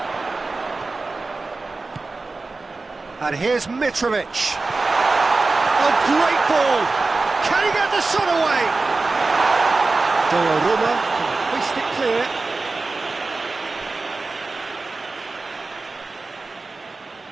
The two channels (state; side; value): quieter; left; 3.6 dB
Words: And here's Mitrovic. A great ball. Can he get the shot away? Donnarumma can hoist it clear.